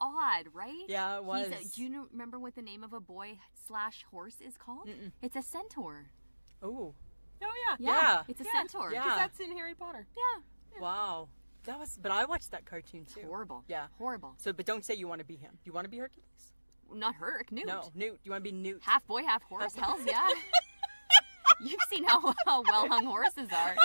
odd, right? Yeah, it was. Do you remember what the name of a boy/horse is called? Mm-mm. It's a centaur. Oh. Oh yeah. Yeah. It's a Yeah. centaur. Yeah. Because that's in Harry Potter. Yeah. Wow. That was. But I watched that cartoon too. Horrible. Yeah. Horrible. So, but don't say you want to be him. You want to be Hercules? Not Herc, Newt. No, Newt. You want to be Newt? Half boy, half horse. Hell's yeah. You've seen how well hung horses are.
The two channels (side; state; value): both; inverted; correlation -1.00